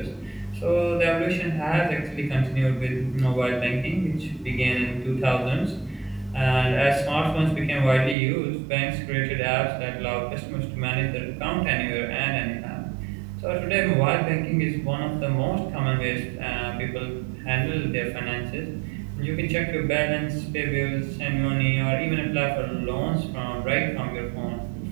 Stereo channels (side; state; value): left; drops out; at 8.2 s